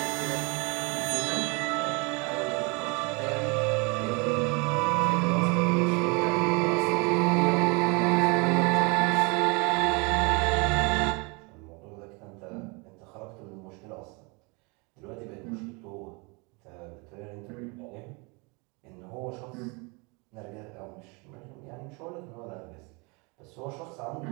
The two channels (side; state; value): left; quieter; 29.7 dB